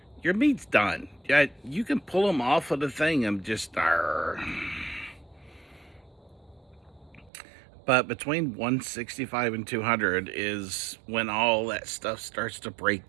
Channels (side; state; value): left; drops out; at 7.3 s